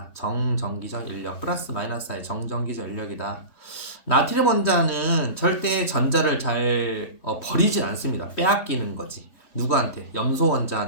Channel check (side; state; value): right; late; 3.2 ms